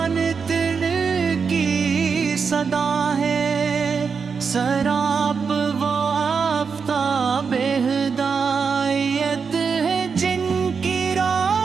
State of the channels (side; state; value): left; quieter; 5.7 dB